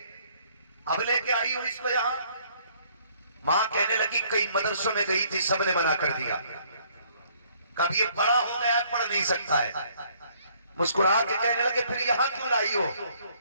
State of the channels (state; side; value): inverted; both; correlation -0.63